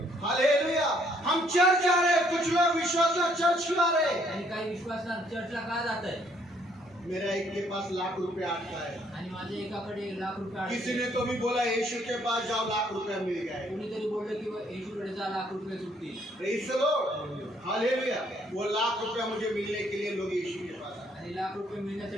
हालेलुया। हम चर्च जा रहे हैं, कुछ लोग विश्वास चर्च क्यों आ रहे हैं? आणि काही विश्वासणार चर्चला का जात आहे? मेरा एक के पास लाख रुपए आता है। आणि माझ्या एकाकडे 1,00,000 रुपये किसी आहेत. ने तो भी बोला यीशु के पास जाओ, लाख रुपया मिल गए। कोणीतरी बोललं की येशूकडे जा, 1,00,000 रुपये सुटतील. Praise the Lord. हालेलुया। वो लाख रुपया मुझे मिलने के लिए लोग यीशु के पास आए। आणि 1,00,000 रुपये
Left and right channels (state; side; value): normal; both; correlation 0.67